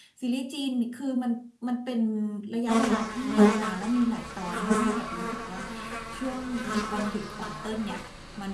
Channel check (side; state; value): both; identical; correlation 1.00